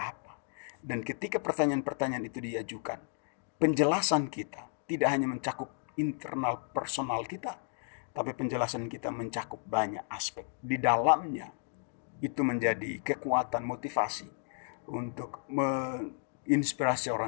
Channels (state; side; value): silent; right; 56 dB below the other